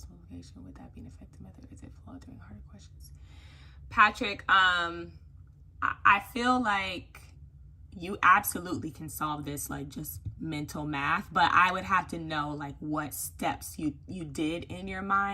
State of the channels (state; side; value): identical; both; correlation 1.00